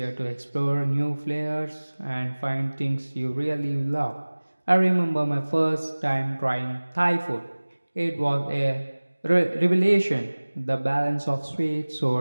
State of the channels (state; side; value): inverted; both; correlation -1.00